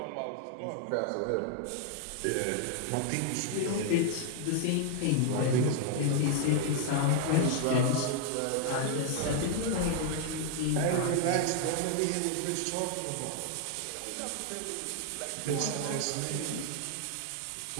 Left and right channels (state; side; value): different; both; correlation 0.00